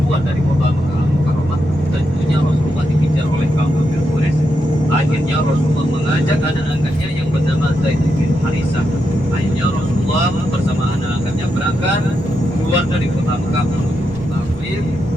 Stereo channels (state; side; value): normal; both; correlation 0.84